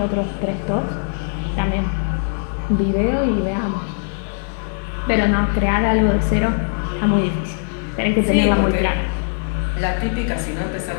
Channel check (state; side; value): silent; right; digital silence